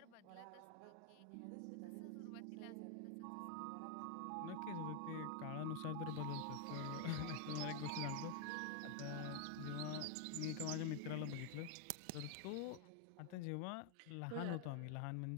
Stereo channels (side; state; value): both; different; correlation 0.00